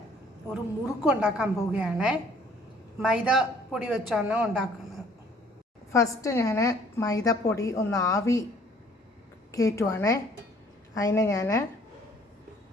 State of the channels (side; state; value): both; normal; correlation 0.58